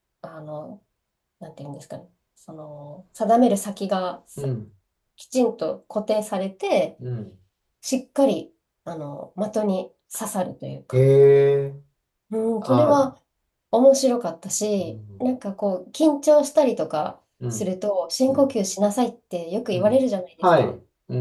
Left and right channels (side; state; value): both; identical; correlation 1.00